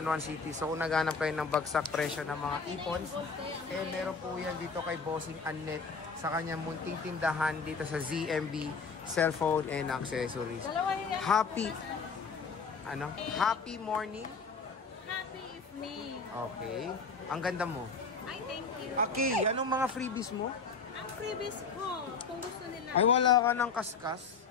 Juan City. So kung naghanap kayo ng bagsak presyo ng mga ipons, eh meron po yan dito kay Bossing Annette sa kanyang munting tindahan dito sa ZMB Cellphone and Accessories. Happy morning? Happy evening. Okay. Ang ganda mo. Ay, thank you. Okay, anong mga freebies mo? Ang freebies ko, kung gusto nila. Ay, wala ka ng kaskas?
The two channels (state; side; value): quieter; right; 4.9 dB